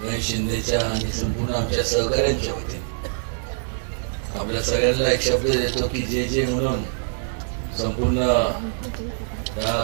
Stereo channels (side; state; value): left; silent; digital silence